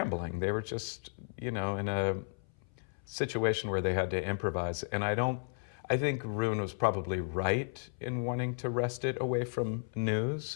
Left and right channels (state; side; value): silent; right; 55 dB below the other